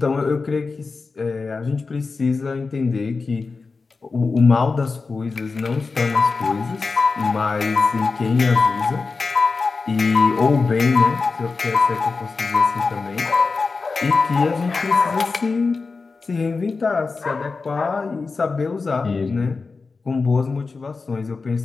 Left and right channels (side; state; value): right; quieter; 4.3 dB